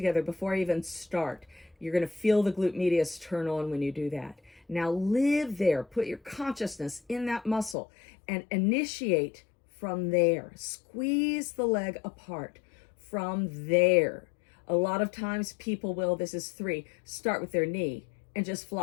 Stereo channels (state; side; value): drops out; right; at 7.8 s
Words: before I even start. You're going to feel the glute medius turn on when you do that. Now live there. Put your consciousness in that muscle and initiate from there. Squeeze the leg apart from there. A lot of times people will, this is 3, start with their knee and just